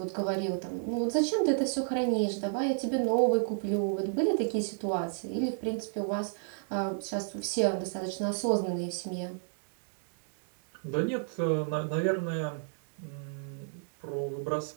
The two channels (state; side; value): silent; left; digital silence